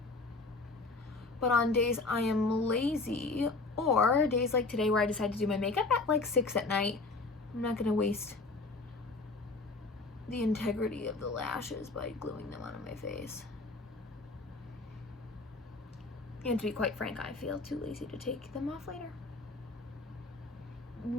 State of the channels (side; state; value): right; quieter; 3.6 dB